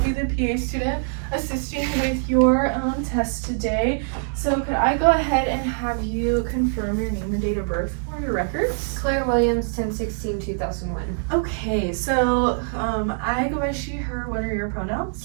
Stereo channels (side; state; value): left; silent; 63 dB below the other